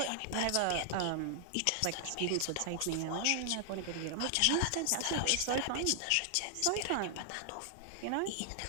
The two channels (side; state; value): both; different; correlation 0.00